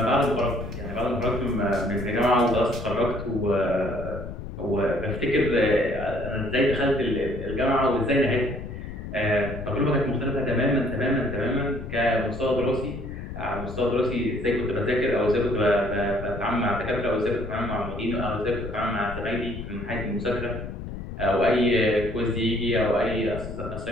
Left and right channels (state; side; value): noise; left; rumble, 9 dB below the sound